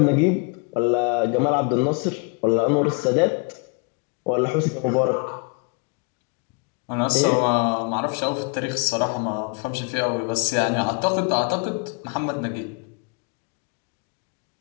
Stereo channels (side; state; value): right; quieter; 33.8 dB